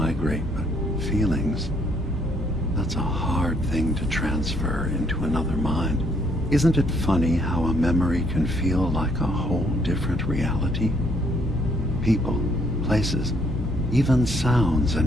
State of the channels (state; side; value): noise; left; hum, 7 dB below the sound